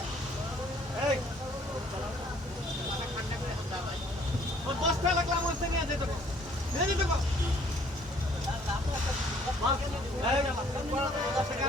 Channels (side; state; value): both; normal; correlation 0.60